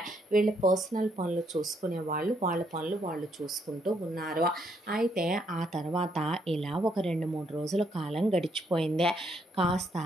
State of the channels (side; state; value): both; normal; correlation 0.73